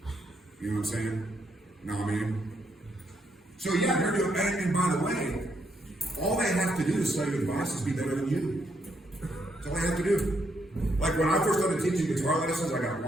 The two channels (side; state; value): both; normal; correlation 0.76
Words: You know what I'm saying? Know what I mean? So yeah, they're doing, and by the way, all they have to do to study advice is be better than you. That's all they have to do. Like, when I first started teaching guitar lessons, I got